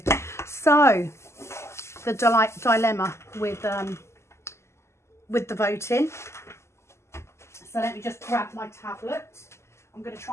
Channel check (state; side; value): late; right; 0.13 ms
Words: So the dilemma with the voting. So let me just grab my tablet. I'm going to